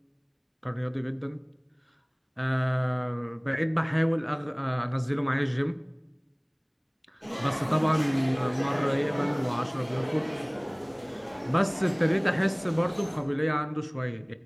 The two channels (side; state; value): both; identical; correlation 1.00